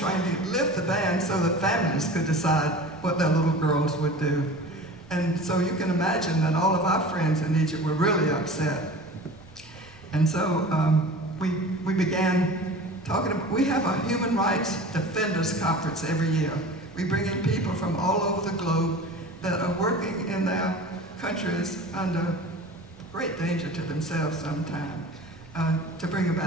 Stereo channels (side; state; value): both; normal; correlation 0.38